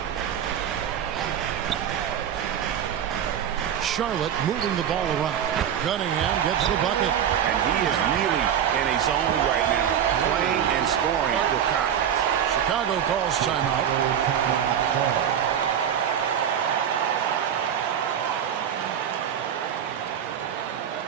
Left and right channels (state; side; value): quieter; left; 9.1 dB